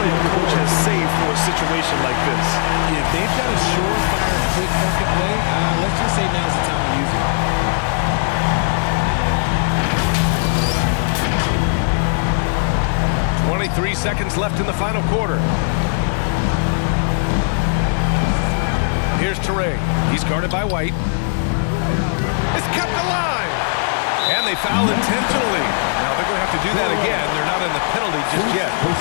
a coach has saved for a situation like this. Yeah, if they've got a surefire, quick bucket play, let's just say now's the time to use it. .23 seconds left in the final quarter. Here's Teray. He's guarded by White. It's kept alive. And they foul intentionally. Now they're going to have to do that again. They're not in the penalty just yet.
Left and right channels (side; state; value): right; silent; digital silence